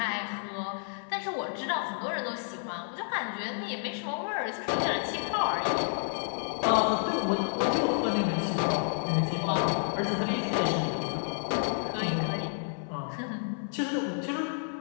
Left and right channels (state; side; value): silent; right; 58 dB below the other